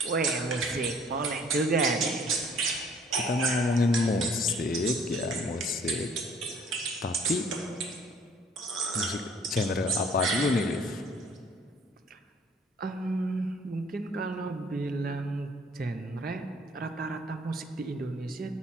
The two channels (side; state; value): both; normal; correlation 0.57